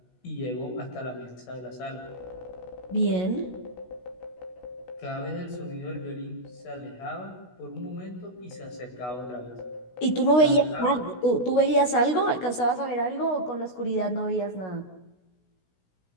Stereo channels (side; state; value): right; late; 16 ms